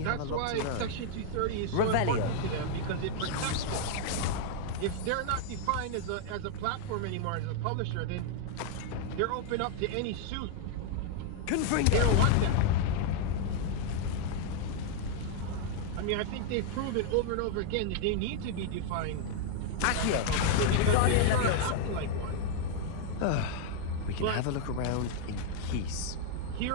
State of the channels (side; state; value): both; different; correlation 0.00